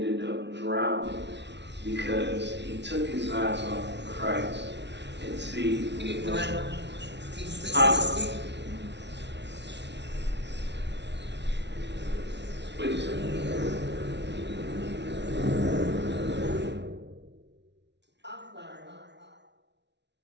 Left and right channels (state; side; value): late; left; 0.51 ms